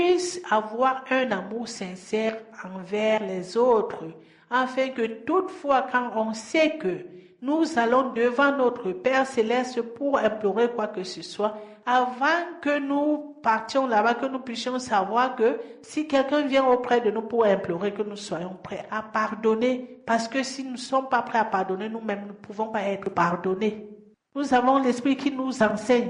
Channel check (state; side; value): identical; both; correlation 1.00